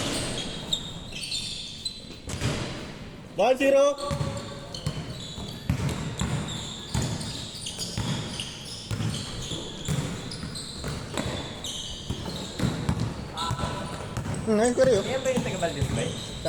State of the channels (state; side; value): identical; both; correlation 1.00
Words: Ball zero. Ngayon ko rin yun. Yan ba yung taga-Valdez ba?